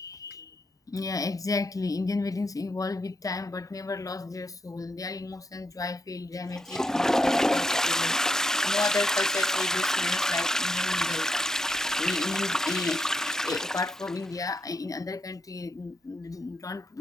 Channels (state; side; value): normal; both; correlation 0.80